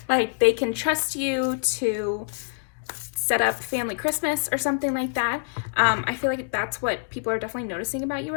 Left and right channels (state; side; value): silent; right; digital silence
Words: Like they can trust you to set up family Christmas or something like that. I feel like that's what people are definitely noticing about you